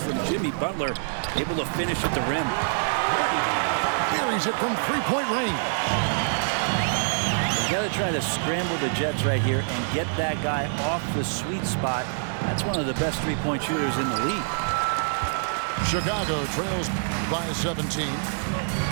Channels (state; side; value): silent; left; digital silence